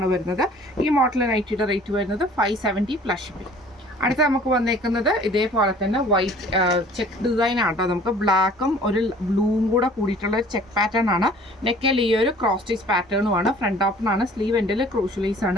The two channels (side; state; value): both; normal; correlation 0.51